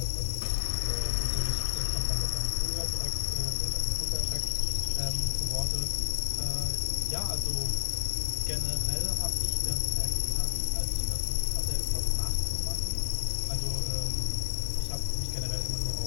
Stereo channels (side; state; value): right; silent; digital silence